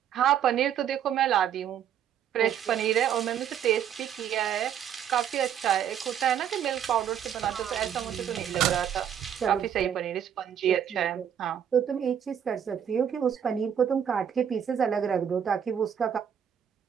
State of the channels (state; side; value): quieter; left; 9.0 dB